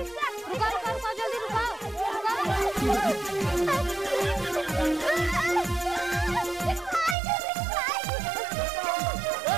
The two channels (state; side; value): drops out; left; at 7.2 s